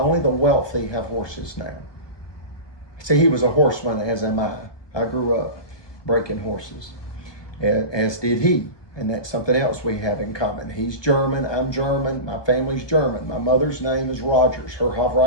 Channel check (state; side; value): late; right; 1.2 ms